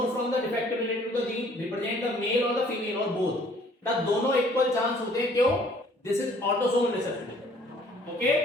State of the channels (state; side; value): normal; both; correlation 0.58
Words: from the defect related to the gene, represent the male or the female or both? ना दोनों इक्वल चांस होते हैं, क्यों? This is autosomal recessive, okay?